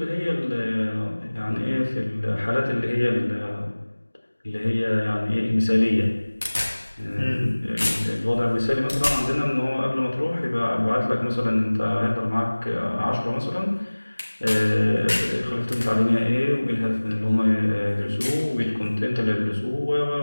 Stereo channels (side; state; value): both; inverted; correlation -1.00